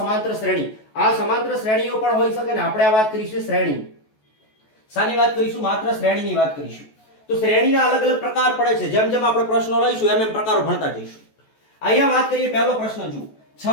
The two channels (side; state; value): right; late; 14 ms